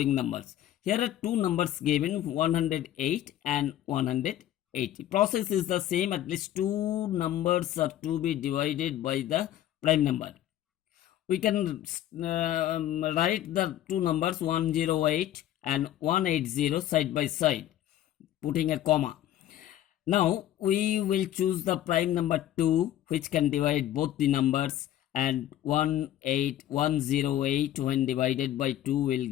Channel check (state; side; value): quieter; right; 12.5 dB